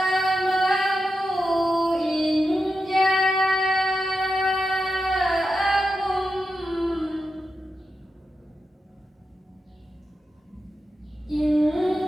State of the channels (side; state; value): both; normal; correlation 0.88